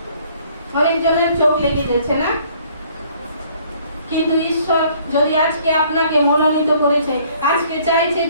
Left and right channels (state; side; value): inverted; both; correlation -0.60